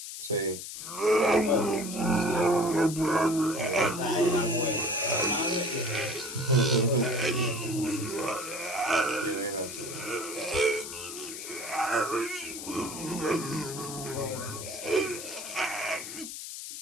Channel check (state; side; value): noise; left; hiss, 9 dB below the sound